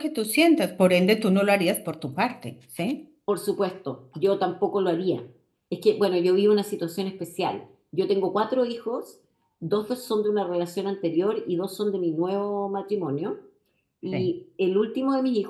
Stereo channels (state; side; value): identical; both; correlation 1.00